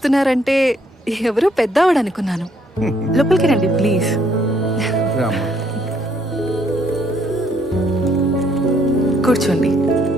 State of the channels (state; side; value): normal; both; correlation 0.68